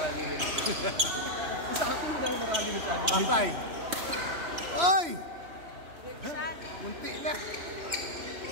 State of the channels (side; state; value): left; late; 3.0 ms